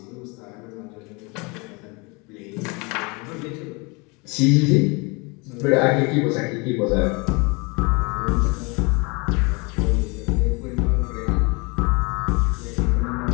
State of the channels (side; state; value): right; quieter; 28.7 dB